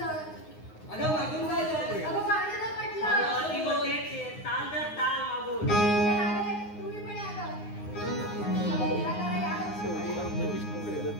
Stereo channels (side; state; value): right; late; 9.6 ms